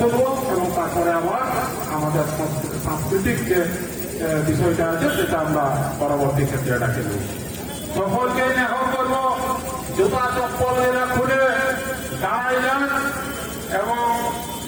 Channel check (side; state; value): both; identical; correlation 1.00